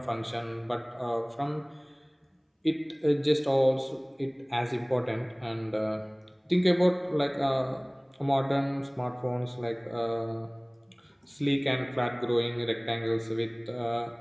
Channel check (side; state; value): both; identical; correlation 1.00